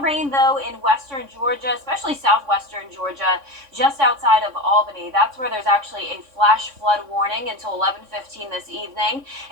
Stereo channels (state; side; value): late; left; 3.5 ms